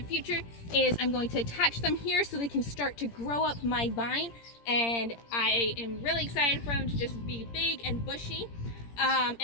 future is I'm going to attach them here so they can start to grow up my vine, and I am really excited for them to just be big and bushy.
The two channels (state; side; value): late; right; 17 ms